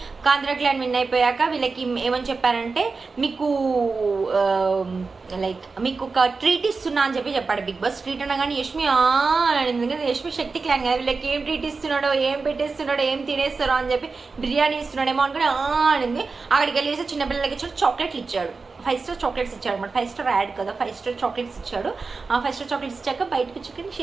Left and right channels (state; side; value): quieter; left; 4.3 dB